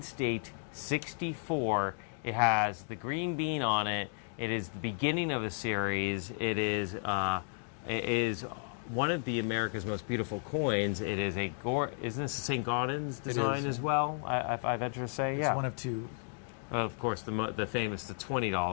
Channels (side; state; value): right; silent; 55 dB below the other